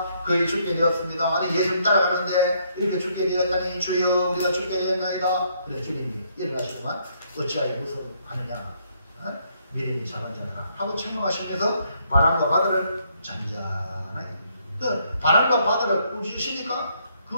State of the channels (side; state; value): both; inverted; correlation -0.71